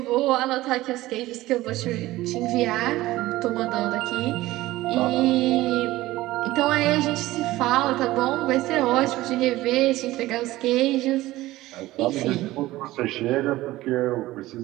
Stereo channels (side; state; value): left; quieter; 17.2 dB